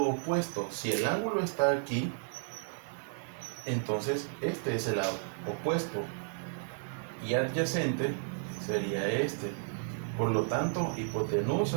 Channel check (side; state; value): left; silent; digital silence